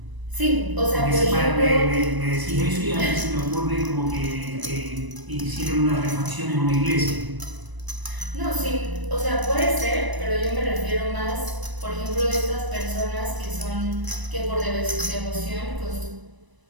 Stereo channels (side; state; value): left; late; 1.0 ms